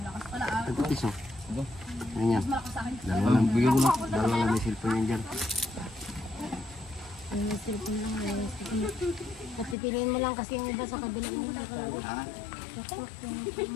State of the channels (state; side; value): drops out; right; at 9.8 s